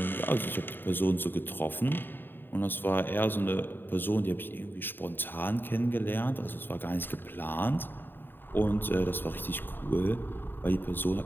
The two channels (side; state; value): right; late; 0.095 ms